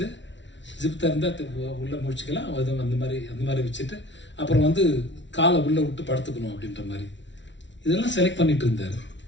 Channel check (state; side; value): late; right; 0.53 ms